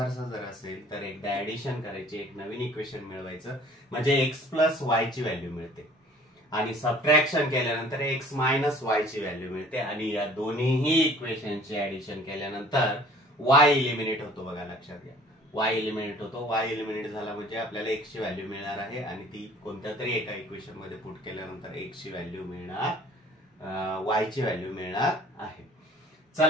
जर असेल तर एकदा ऍडिशन करायची, एक नवीन इक्वेशन मिळवायचं, म्हणजे एक्स प्लस वाय ची व्हॅल्यू मिळते आणि सबट्रॅक्शन केल्यानंतर एक्स मायनस वाय ची व्हॅल्यू मिळते आणि या दोन्हीही इक्वेशनचे ऍडिशन केल्यानंतर वाय इलिमिनेट होतो. बघा, लक्षात घ्या, y एलिमिनेट होतो. y एलिमिनेट झाला म्हणजे आपल्याला x ची व्हॅल्यू मिळणार आहे आणि ती कोणत्या तरी एका इक्वेशन मध्ये पुट केल्यानंतर x ची व्हॅल्यू मिळणार, y ची व्हॅल्यू मिळणार आहे.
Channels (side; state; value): both; normal; correlation 0.51